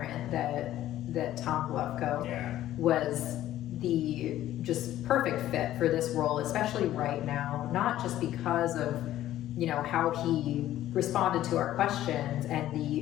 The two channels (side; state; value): right; quieter; 13.4 dB